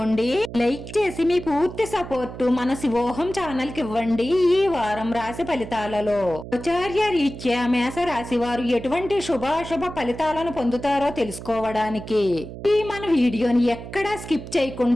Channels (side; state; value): right; noise; hum, 11 dB below the sound